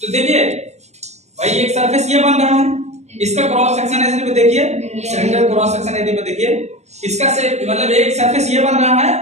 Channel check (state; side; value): late; left; 0.32 ms